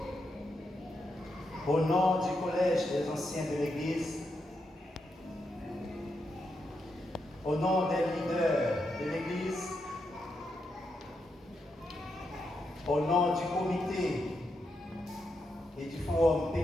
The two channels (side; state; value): both; normal; correlation 0.83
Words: Au nom du collège des anciens de l'église, au nom des leaders de l'église, au nom du comité et du forum